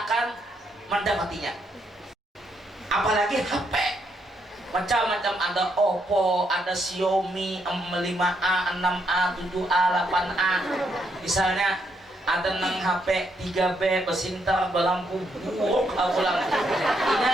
akan mendapatinya. Apalagi HP, macam-macam, ada Oppo, ada Xiaomi 5A, 6A, 7A, 8A. Misalnya ada nang HP 3B besintar balampu buruk ulang. Ini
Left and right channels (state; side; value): normal; both; correlation 0.77